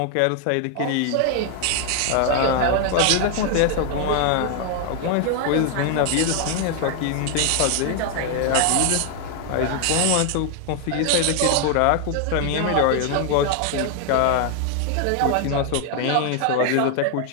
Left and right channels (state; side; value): different; both; correlation 0.00